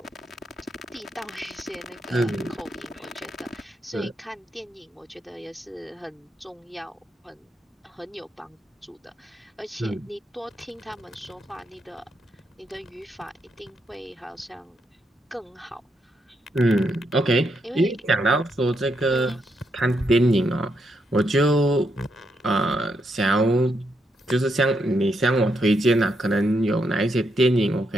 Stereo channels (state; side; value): normal; both; correlation 0.80